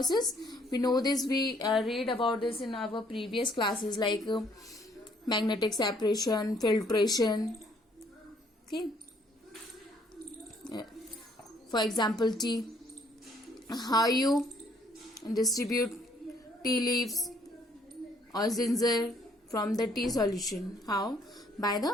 we know this, we read about this in our previous classes like magnetic separation, filtration. Okay. For example, tea. How you distribute tea leaves or ginger from the tea solution? How? By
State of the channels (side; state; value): both; normal; correlation 0.64